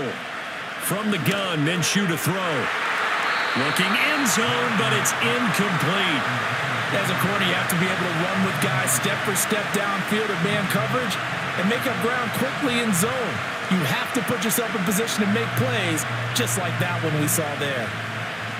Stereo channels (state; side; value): identical; both; correlation 1.00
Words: From the gun, Minshew to throw. Looking end zone, but it's incomplete. As a corner, you have to be able to run with guys step for step downfield in man coverage. and make up ground quickly in zone. You have to put yourself in position to make plays, just like that one we saw there.